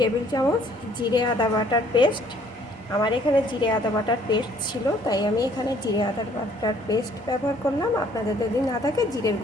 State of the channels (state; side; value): normal; both; correlation 0.60